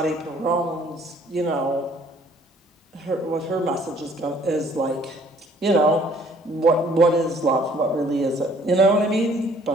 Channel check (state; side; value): normal; both; correlation 0.59